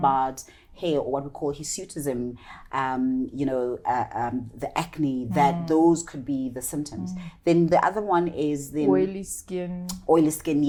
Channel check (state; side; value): identical; both; correlation 1.00